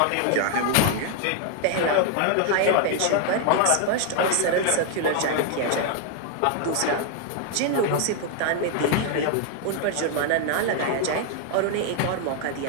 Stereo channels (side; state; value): both; different; correlation 0.00